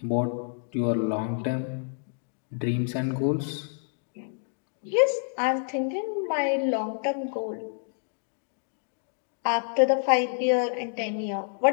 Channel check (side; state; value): right; silent; digital silence